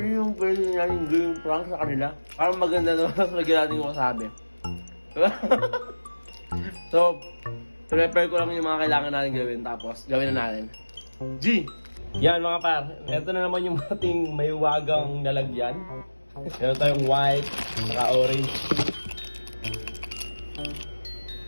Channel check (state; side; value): inverted; both; correlation -1.00